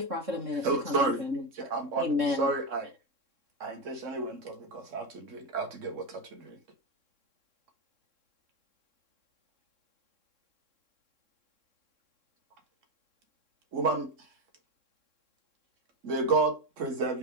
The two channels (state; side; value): late; left; 3.6 ms